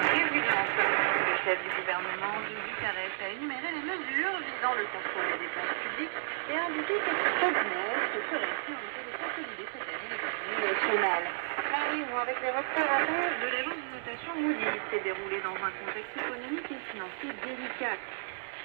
Le chef du gouvernement, Bucarest, a énuméré les mesures visant le contrôle des dépenses publiques et a indiqué que ce se ferait si on était de consolider cette année l'économie nationale. La réunion avec les représentants de l'agence de notation Moody's s'est déroulée dans un contexte économique et financier délicat.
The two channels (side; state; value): left; silent; digital silence